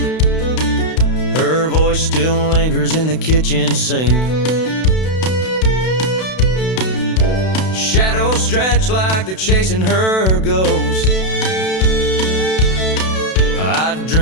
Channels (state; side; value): late; right; 32 ms